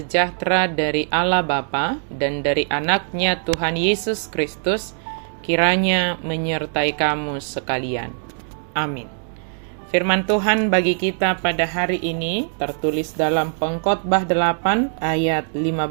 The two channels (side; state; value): left; silent; digital silence